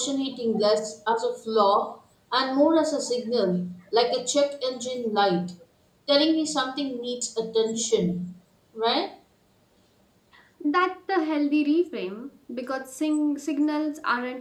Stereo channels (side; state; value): both; identical; correlation 1.00